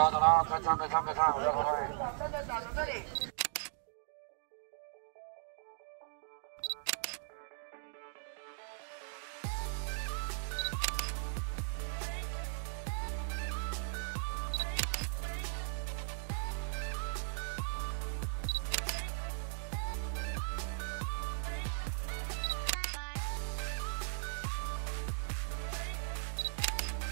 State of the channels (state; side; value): silent; left; digital silence